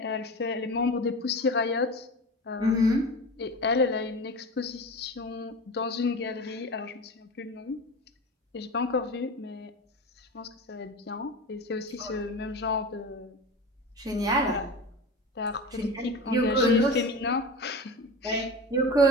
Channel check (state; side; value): normal; both; correlation 0.30